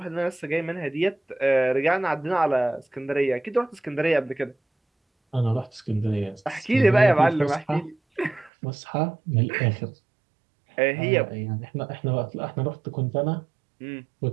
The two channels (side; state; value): left; drops out; at 8.5 s